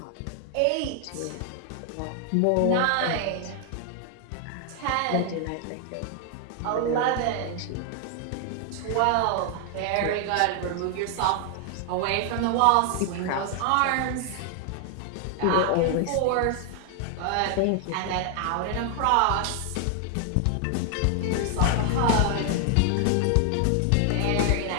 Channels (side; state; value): both; different; correlation 0.00